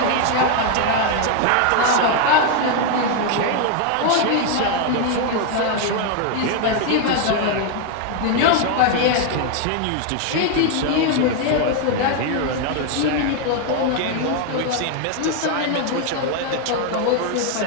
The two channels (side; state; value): both; different; correlation 0.01